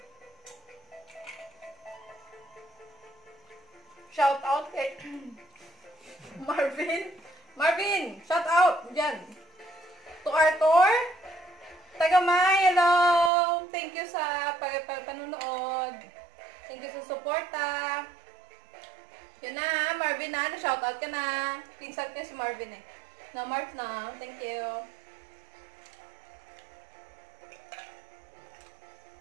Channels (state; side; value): drops out; left; at 13.3 s